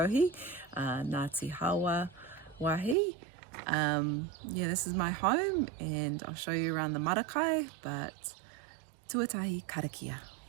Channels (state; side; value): drops out; left; at 3.0 s